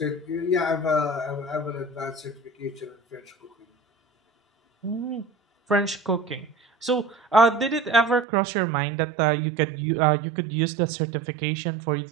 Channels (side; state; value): left; drops out; at 8.2 s